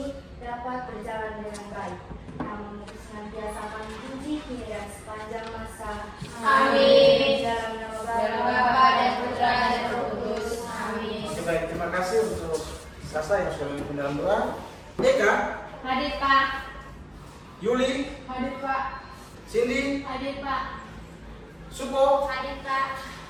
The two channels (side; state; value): both; identical; correlation 1.00